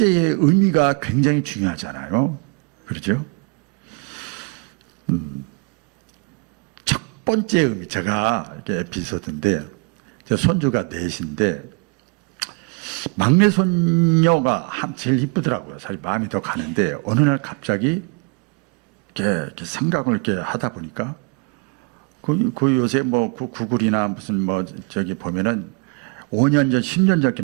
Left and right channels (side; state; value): left; quieter; 32.8 dB